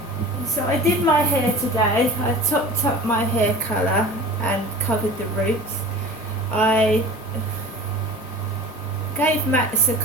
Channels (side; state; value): both; normal; correlation 0.38